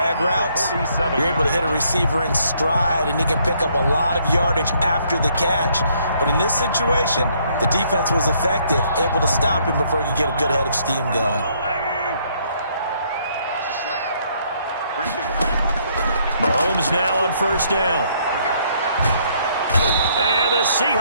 routes, you're able to hit a receiver in stride, and he can pick up a lot of yardage after the catch. But in this situation, the defense was effective, able to stop him before he could get a good head of steam going. Mahomes now on first down. And the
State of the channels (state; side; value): inverted; both; correlation -0.68